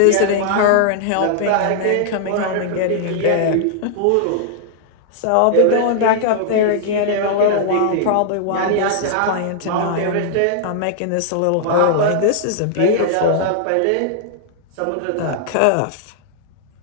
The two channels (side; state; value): both; different; correlation -0.01